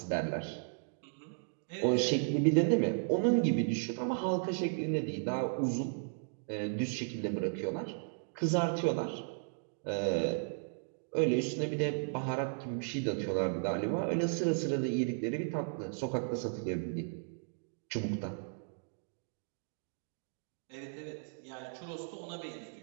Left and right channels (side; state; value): left; silent; digital silence